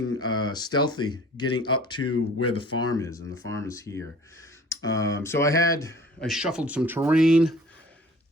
stealthy, getting up to where the farm is, and the farm is here. So I shuffled some terrain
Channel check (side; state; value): both; normal; correlation 0.48